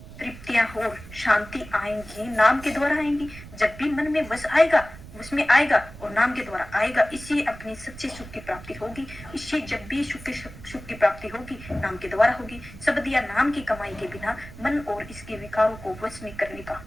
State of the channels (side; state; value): right; noise; rumble, 16 dB below the sound